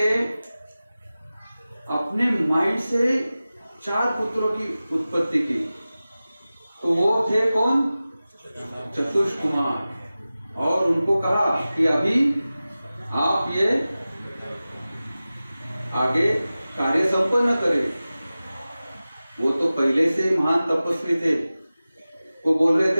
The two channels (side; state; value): both; inverted; correlation -0.96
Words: अपने माइंड से 4 पुत्रों की उत्पत्ति की। तो वो थे कौन? चतुष्कुमार। और उनको कहा कि अभी आप ये आगे कार्य संपन्न करें। वो तो पहले से महान तपस्वी थे, वो बोल रहे